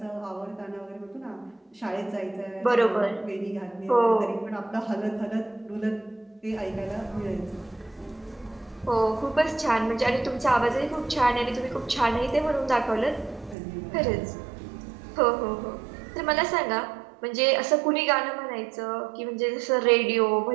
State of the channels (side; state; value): left; drops out; at 13.6 s